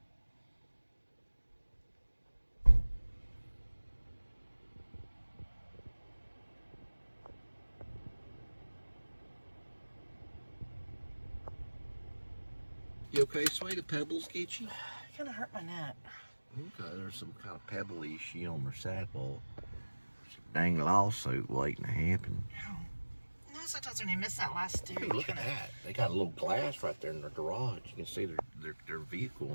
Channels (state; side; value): inverted; both; correlation -1.00